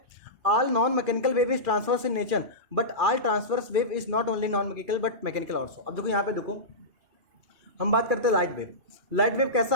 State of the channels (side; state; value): left; late; 2.4 ms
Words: All non mechanical wave is transverse in nature, but all transverse wave is not only non mechanical but mechanical also. अब देखो यहाँ पे देखो हम बात करते हैं लाइट वेव। लाइट वेव कैसा